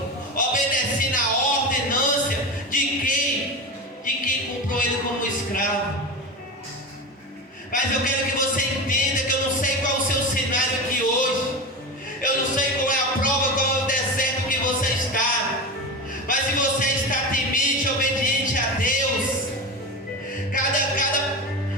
obedecendo a ordenância de quem comprou ele como escravo. Mas eu quero que você entenda que eu não sei qual é o seu cenário aqui hoje. Eu não sei qual é a prova, qual é o deserto que você está. Mas se você está temente, obediente a Deus,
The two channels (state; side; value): normal; both; correlation 0.23